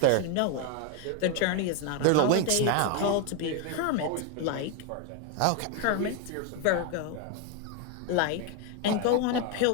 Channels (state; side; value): different; both; correlation 0.01